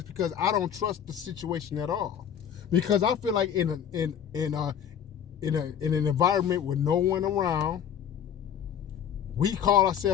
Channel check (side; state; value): right; quieter; 8.8 dB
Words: because I don't trust the situation at all. Because I feel like in an environment with no one around, we call